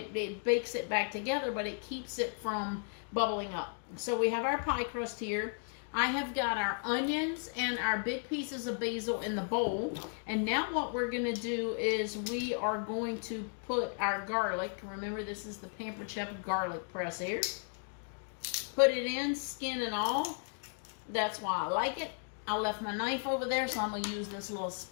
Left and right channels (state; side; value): silent; right; 54 dB below the other